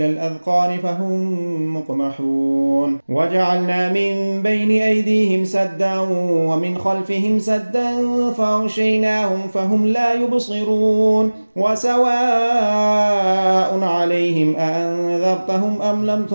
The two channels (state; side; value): inverted; both; correlation -1.00